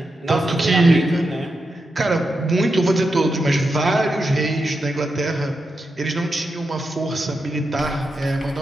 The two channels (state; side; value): normal; both; correlation 0.87